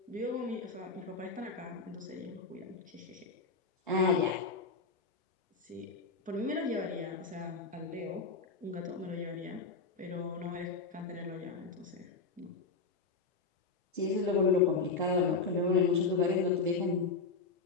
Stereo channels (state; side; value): quieter; right; 4.3 dB